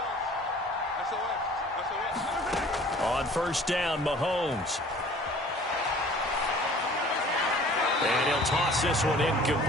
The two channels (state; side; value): normal; both; correlation 0.50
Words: On first down, Mahomes. And he'll toss this one